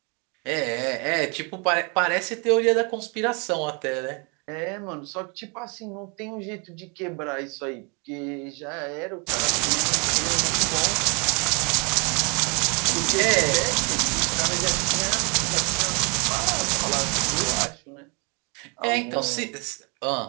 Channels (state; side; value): quieter; left; 33.1 dB